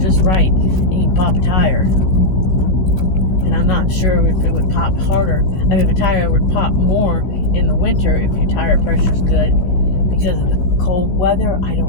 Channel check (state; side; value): late; right; 16 ms